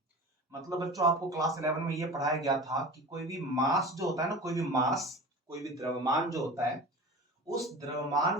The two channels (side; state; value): both; normal; correlation 0.35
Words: मतलब बच्चों आपको क्लास 11 में ये पढ़ाया गया था कि कोई भी मास जो होता है ना, कोई भी मास, कोई भी द्रव्यमान जो होता है, उस द्रव्यमान